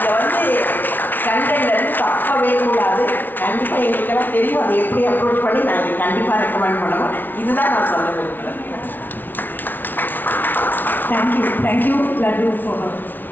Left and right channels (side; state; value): right; late; 0.089 ms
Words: கண்டென்ட்லேருந்து தப்பவே கூடாது. கண்டிப்பாக எங்களுக்கெல்லாம் தெரியும் அதை எப்படி அப்ரோச் பண்ணி நாங்கள் கண்டிப்பாக ரெக்கமெண்ட் பண்ணுவோம். இதுதான் நான் சொல்ல விரும்புகிறேன். தேங்க்யூ லட்டு ஃபார்